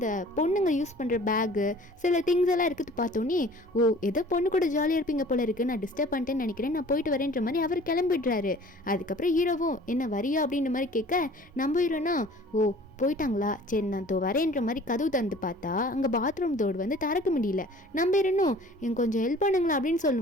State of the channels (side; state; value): both; normal; correlation 0.48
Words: பொண்ணுங்க யூஸ் பண்ணுற பேகு சில திங்ஸ் எல்லாம் இருக்குது பார்த்தோன்னே, ஓ ஏதோ பொண்ணு கூட ஜாலியாக இருப்பீங்க போல இருக்குது, நான் டிஸ்டர்ப் பண்ணிட்டேன்னு நினைக்கிறேன், நான் போயிட்டு வரேன்ற மாதிரி அவர் கிளம்பிடுறாரு. அதுக்கப்புறம் ஹீரோவும் என்ன வரியா அப்படின்ற மாதிரி கேட்க, நம்ம ஹீரோனா ஓ போயிட்டாங்களா, சரி நான் வரேன்ற மாதிரி கதவு தந்து பார்த்தா அங்கே பாத்ரூம் டோர் வந்து திறக்க முடியல. நம்ம இருந்தும் எனக்கு கொஞ்சம் ஹெல்ப் பண்ணுங்களா அப்படின்னு